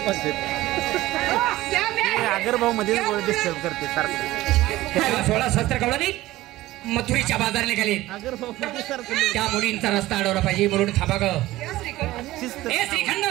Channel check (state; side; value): quieter; left; 16.9 dB